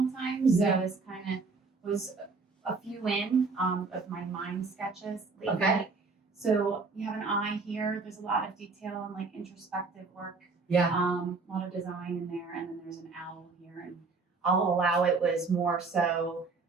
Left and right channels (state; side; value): quieter; left; 4.2 dB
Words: time. So this kind of was a few in of my mind sketches lately. Okay. So you have an eye here. There's a lot of detail and like introspective work. Yeah. A lot of design in there. And then there's an owl here. And I'll Allow It was more so